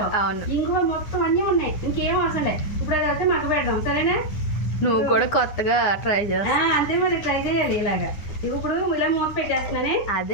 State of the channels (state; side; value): late; right; 9.7 ms